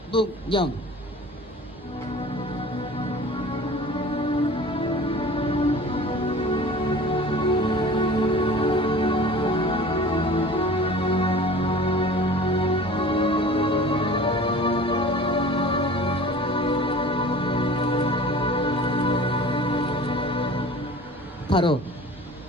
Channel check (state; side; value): normal; both; correlation 0.42